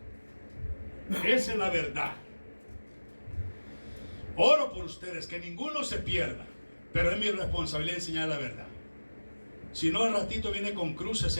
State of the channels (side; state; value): both; inverted; correlation -1.00